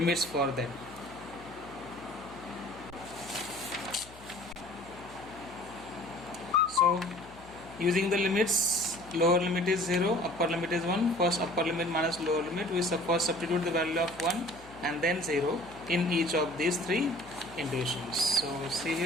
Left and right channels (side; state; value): left; noise; hum, 21 dB below the sound